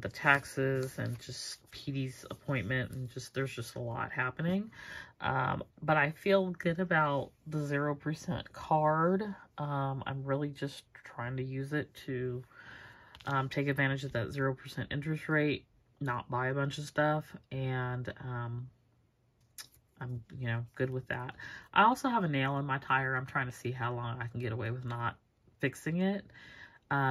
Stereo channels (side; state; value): both; identical; correlation 1.00